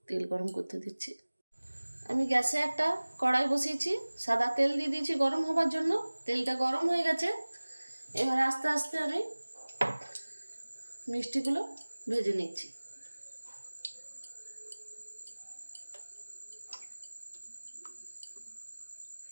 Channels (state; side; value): inverted; both; correlation -1.00